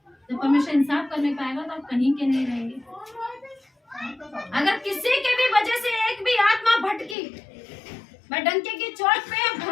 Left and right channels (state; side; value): drops out; right; at 7.2 s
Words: जब परमेश्वर इंसाफ करने पाएगा तो आप कहीं के नहीं रहेंगे। अगर किसी के भी वजह से एक भी आत्मा भटकी, मैं डंके की चोट पे